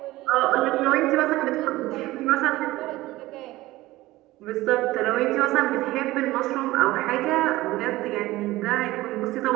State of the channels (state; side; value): quieter; left; 18.0 dB